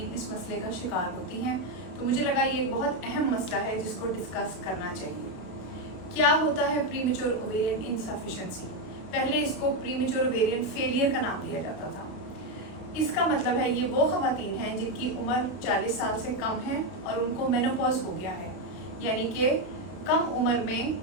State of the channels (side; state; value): right; late; 33 ms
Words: इस मसले का शिकार होती हैं। तो मुझे लगा ये एक बहुत अहम मसला है जिसको डिस्कस करना चाहिए। क्या होता है प्रीमेच्योर ओवेरियन इनसफिशिएंसी? पहले इसको प्रीमेच्योर ओवेरियन फेलियर का नाम दिया जाता था। इसका मतलब है ये वो ख़वातीन हैं जिनकी उम्र 40 साल से कम है और उनको मेनोपॉज हो गया है, यानी कि कम उम्र में